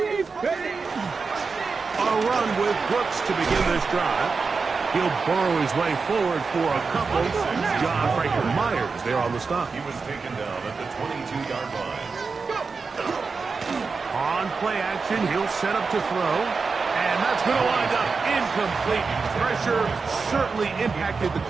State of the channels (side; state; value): left; quieter; 4.7 dB